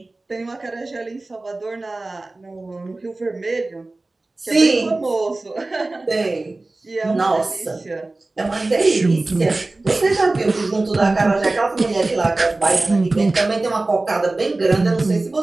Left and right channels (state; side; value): quieter; left; 3.1 dB